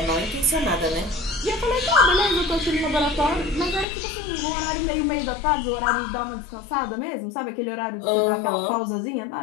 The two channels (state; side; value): drops out; right; at 3.9 s